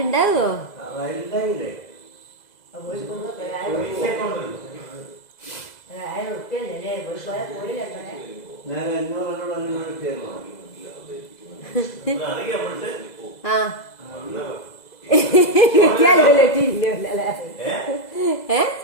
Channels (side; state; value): right; late; 2.0 ms